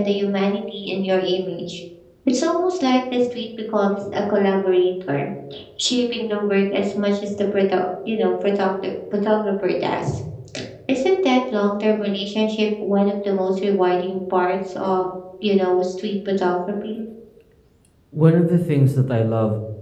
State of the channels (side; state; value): both; identical; correlation 1.00